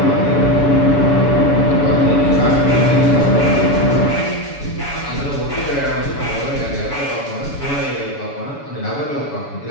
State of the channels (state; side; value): late; right; 7.0 ms